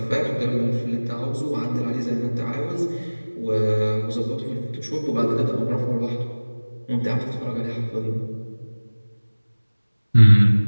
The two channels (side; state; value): both; inverted; correlation -1.00